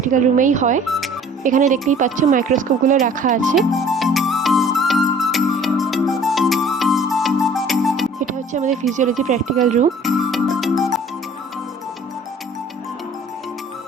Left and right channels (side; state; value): both; normal; correlation 0.51